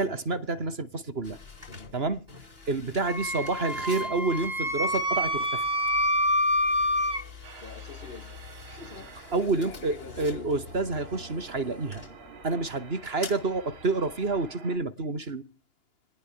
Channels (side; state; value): left; late; 2.9 ms